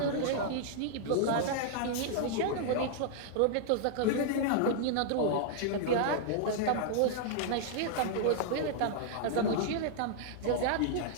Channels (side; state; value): both; different; correlation -0.01